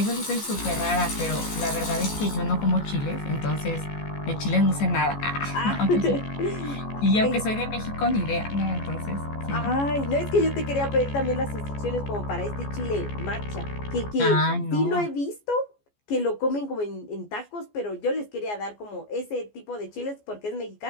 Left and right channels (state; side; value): late; right; 14 ms